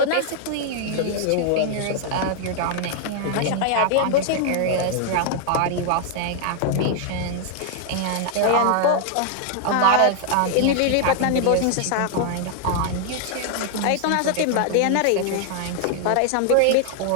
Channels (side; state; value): both; different; correlation 0.00